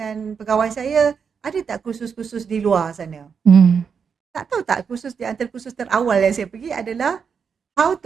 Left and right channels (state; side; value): quieter; left; 6.4 dB